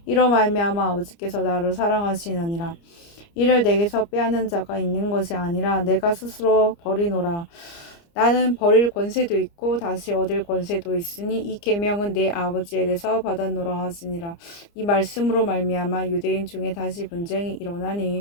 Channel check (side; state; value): right; late; 29 ms